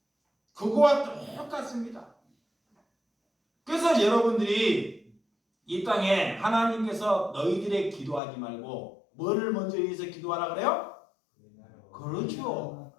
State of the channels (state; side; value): drops out; right; at 8.2 s